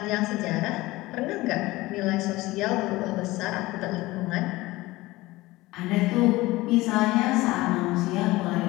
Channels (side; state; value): right; quieter; 19.4 dB